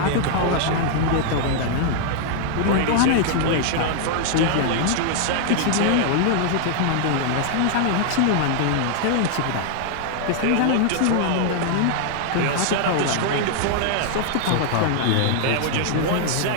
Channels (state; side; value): different; both; correlation -0.01